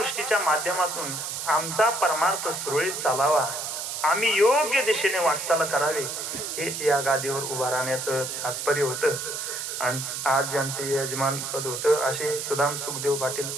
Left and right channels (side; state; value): right; noise; hiss, 5 dB below the sound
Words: माध्यमातून आमचा परमार्थ सुरळीत चालावा, आम्ही योग्य दिशेने वाटचाल करावे हेच या गादीवर उभा राहण्याचं तात्पर्य होतं. आज ज्यांचे यजमान पद होतं असे सुदाम सुखदेव पाटील